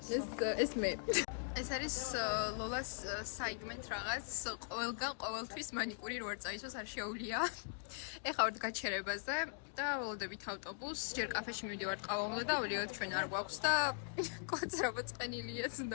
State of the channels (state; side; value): silent; right; digital silence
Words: ეს მე. ეს არის ლოლას საიგმენტ რაღაც. ყველგან ყოველთვის მანიკური რო არ წაისვას არ შეუძლია. ეხლა ვართ გაჩერებაზე და ველოდებით ავტობუსს. ჯერ კაფეში მივდივართ, ყავა უნდა დავლიოთ, ჩვენ არ გვაქვს და კვაცრობა წყენილია